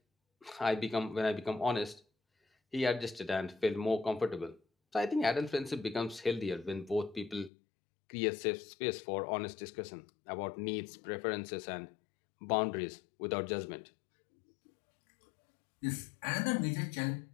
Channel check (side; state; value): right; drops out; at 7.5 s